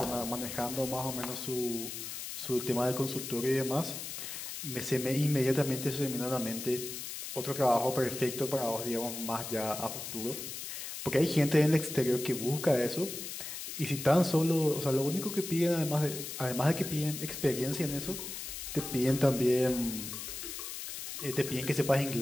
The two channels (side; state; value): left; noise; hiss, 7 dB below the sound